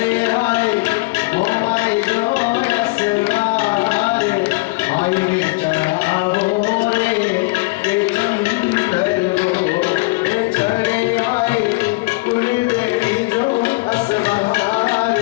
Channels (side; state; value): right; quieter; 25.7 dB